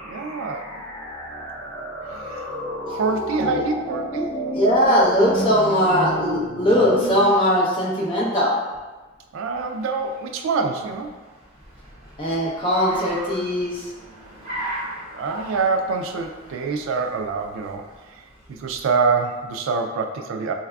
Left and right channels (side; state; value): both; normal; correlation 0.09